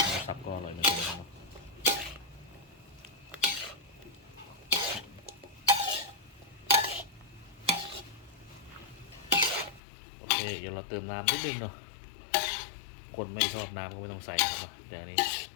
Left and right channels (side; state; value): right; drops out; at 9.8 s